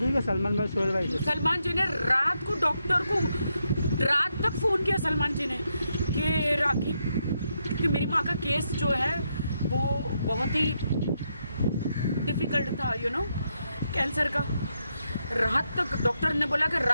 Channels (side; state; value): both; inverted; correlation -0.81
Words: हुई क्या? सलमान भाई सोहेल भाई से? सलमान जी ने रात को डॉक्टर को रात तक फ़ोन किया सलमान जी ने कि राखी, क्योंकि मेरी माँ का केस जो है वो बहुत ही डिफ़िकल्ट था, कैंसर का। रात तक डॉक्टर ने बोला कि